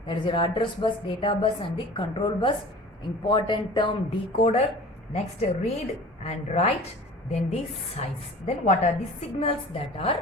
that is your address bus, data bus and the control bus. Important term, decoder. Next read and write, then the size. Then what are the signals that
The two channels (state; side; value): normal; both; correlation 0.42